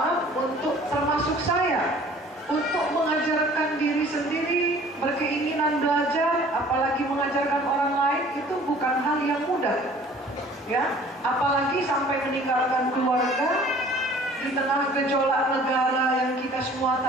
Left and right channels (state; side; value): normal; both; correlation 0.51